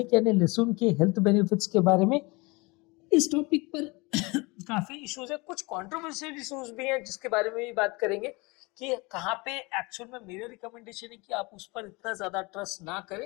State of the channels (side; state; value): right; quieter; 25.8 dB